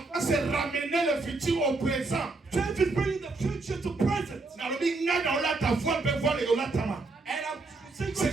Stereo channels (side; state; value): left; quieter; 3.5 dB